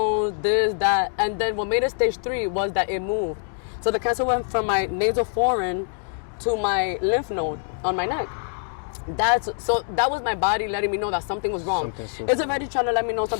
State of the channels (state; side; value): silent; right; digital silence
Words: this, that. And then what made it stage 3 was that it moved. So the cancer went from my nasal foramen to my lymph node on my neck. That was my body letting me know that something was wrong. It's already trying to let me know